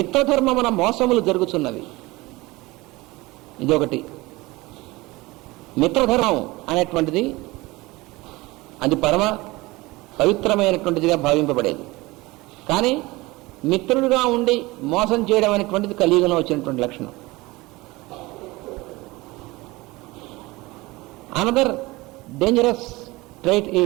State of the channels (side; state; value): left; quieter; 21.5 dB